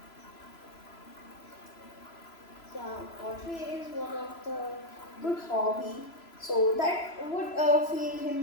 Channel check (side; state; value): right; late; 3.0 ms